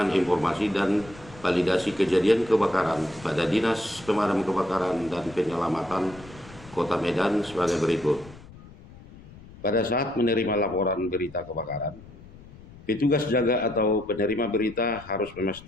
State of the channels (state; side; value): noise; left; rumble, 20 dB below the sound